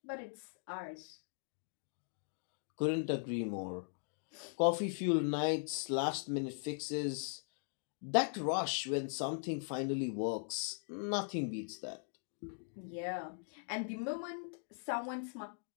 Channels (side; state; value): right; silent; digital silence